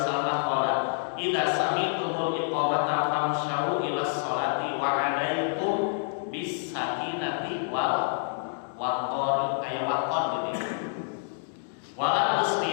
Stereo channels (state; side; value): silent; right; digital silence